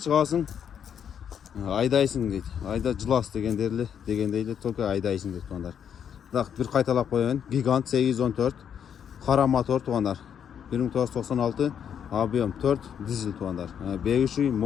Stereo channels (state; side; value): quieter; right; 8.3 dB